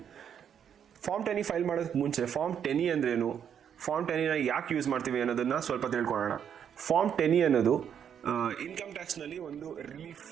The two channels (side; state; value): left; quieter; 8.4 dB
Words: ಫಾರ್ಮ್ 10E ಫೈಲ್ ಮಾಡೋದಕ್ಕೆ ಮುಂಚೆ ಫಾರ್ಮ್ 10E ಅಂದ್ರೇನು, ಫಾರ್ಮ್ 10Eನ ಯಾಕೆ ಯೂಸ್ ಮಾಡ್ತೀವಿ ಅನ್ನೋದನ್ನು ಸ್ವಲ್ಪ ತಿಳ್ಕೊಳ್ಳೋಣ. ಫಾರ್ಮ್ 10E ಅನ್ನೋದು ಇನ್ಕಮ್ ಟ್ಯಾಕ್ಸ್ನಲ್ಲಿ ಒಂದು ರಿಲೀಫ್